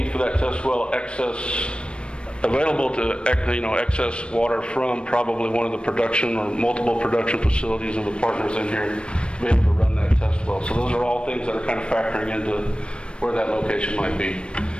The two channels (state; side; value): late; right; 0.057 ms